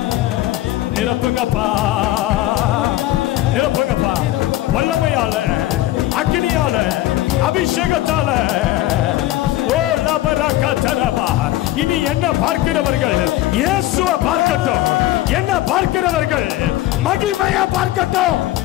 நிரப்புங்கப்பா, நிரப்புங்கப்பா. வல்லமையால, அக்கினியால, அபிஷேகத்தால. ஓ லபரக தரபா. இனி என்ன பார்க்கிறவர்கள் இயேசுவை பார்க்கட்டும், என்ன பார்க்கிறவர்கள் மகிமையை பார்க்கட்டும்.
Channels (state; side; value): quieter; right; 15.5 dB